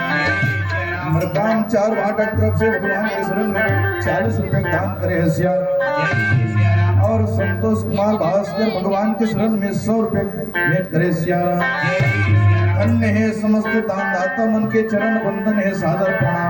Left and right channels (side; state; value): both; identical; correlation 1.00